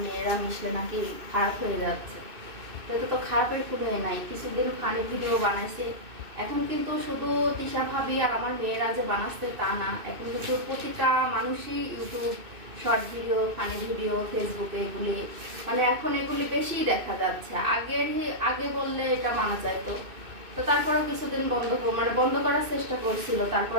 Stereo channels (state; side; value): late; left; 2.6 ms